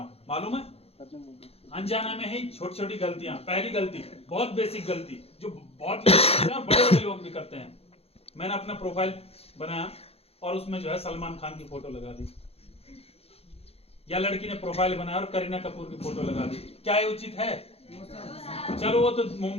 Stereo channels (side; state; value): right; late; 0.29 ms